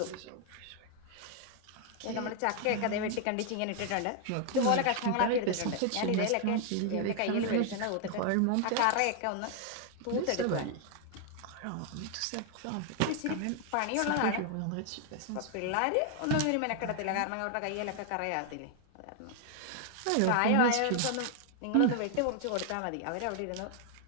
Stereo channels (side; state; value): both; different; correlation 0.00